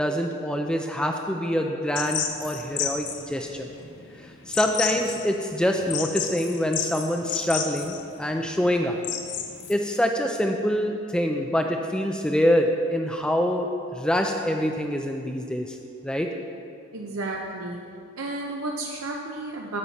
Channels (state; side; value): normal; both; correlation 0.71